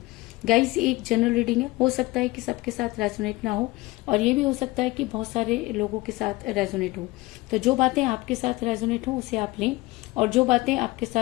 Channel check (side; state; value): right; quieter; 20.7 dB